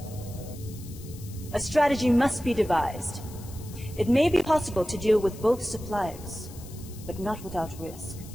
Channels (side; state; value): left; noise; hiss, 19 dB below the sound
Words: A strategy must be devised. It may be possible to deal with both suppliers, but not without risk.